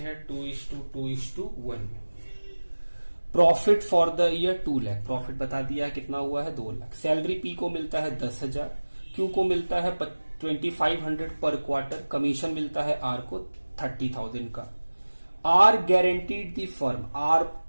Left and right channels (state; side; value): inverted; both; correlation -1.00